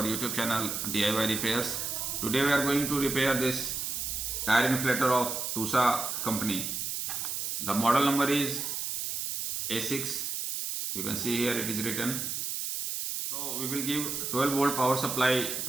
YouTube channel DIY Repairs. Today we are going to repair this tire inflator of TUSA company. The model number is A6. You can see here it is written. So we will give 12 volt power supply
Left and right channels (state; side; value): noise; right; hiss, 3 dB below the sound